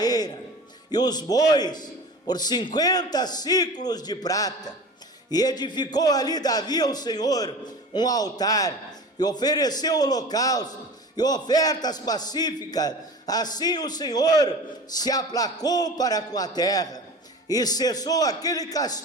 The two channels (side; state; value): both; normal; correlation 0.36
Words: eira e os bois por 50 siclos de prata, e edificou ali Davi ao Senhor um altar, e ofereceu holocausto e ofertas pacíficas. Assim o Senhor se aplacou para com a terra, e cessou aquele